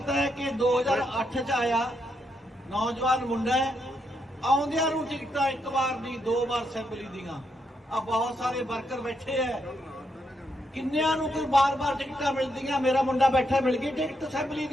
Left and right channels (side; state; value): both; normal; correlation 0.79